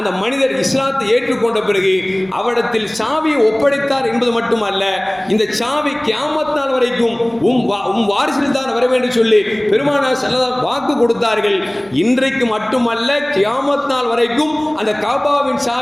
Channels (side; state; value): left; noise; hum, 30 dB below the sound